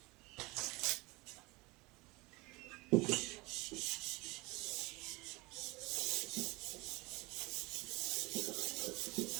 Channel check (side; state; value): left; quieter; 24.1 dB